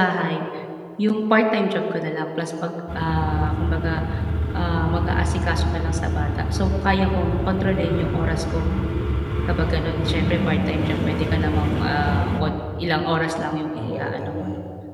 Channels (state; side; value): identical; both; correlation 1.00